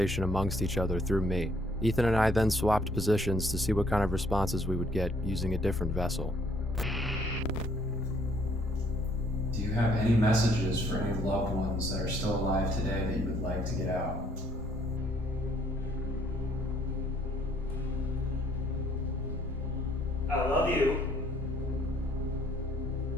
amongst each other through me. Ethan and I then swapped positions to see what kind of responses we would get using a different vessel. Do you have any messages for any loved ones that are still alive today that you would like to get out?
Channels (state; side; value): normal; both; correlation 0.64